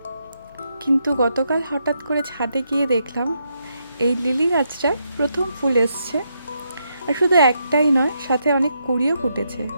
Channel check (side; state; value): both; inverted; correlation -0.80